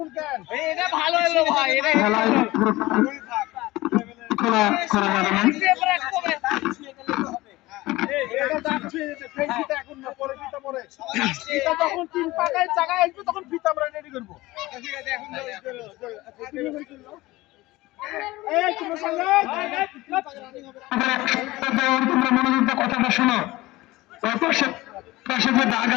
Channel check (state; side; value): quieter; right; 19.2 dB